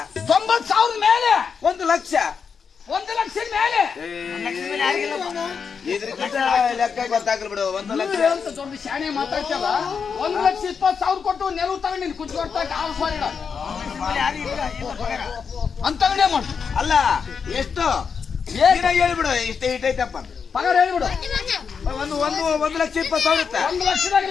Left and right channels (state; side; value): quieter; right; 6.1 dB